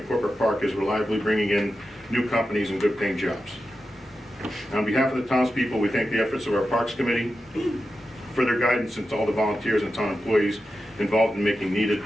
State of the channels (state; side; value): normal; both; correlation 0.91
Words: Corporate Park is reliably bringing in new companies and good paying jobs. On behalf of the townspeople, we thank the efforts of our Parks Committee for their guidance, and to all the volunteers and town employees involved in making needed